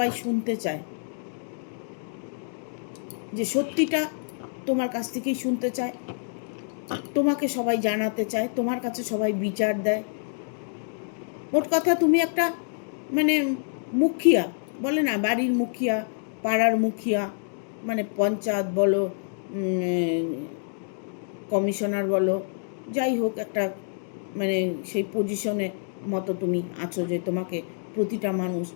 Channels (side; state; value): right; silent; digital silence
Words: শুনতে চায়, যে সত্যিটা তোমার কাছ থেকেই শুনতে চায়, তোমাকে সবাই জানাতে চায়, তোমার কাছে সবাই বিচার দেয়। মোট কথা তুমি একটা মানে মুখিয়া, বলে না বাড়ির মুখিয়া, পাড়ার মুখিয়া, মানে পঞ্চায়েত বলো, কমিশনার বলো, যাই হোক একটা মানে সেই পজিশনে মতো তুমি আছো যে তোমাকে প্রতিটা মানুষ